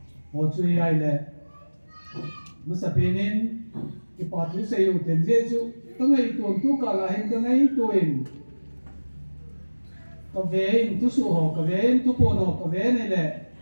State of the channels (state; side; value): inverted; both; correlation -1.00